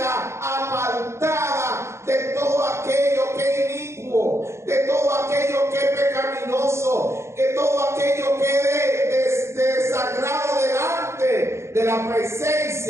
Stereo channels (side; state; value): left; late; 0.13 ms